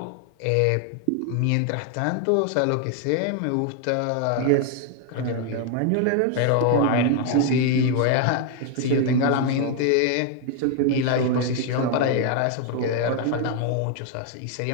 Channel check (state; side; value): different; both; correlation 0.00